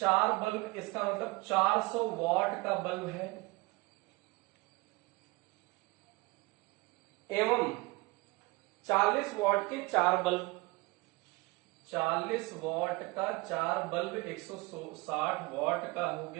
बल्ब, इसका मतलब 400 वॉट का बल्ब है, एवं 40 वॉट के 4 बल्ब, 40 वॉट का 4 बल्ब 160 वॉट का हो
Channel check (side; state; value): left; quieter; 24.3 dB